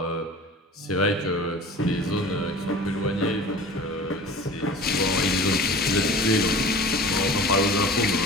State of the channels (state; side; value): normal; both; correlation 0.40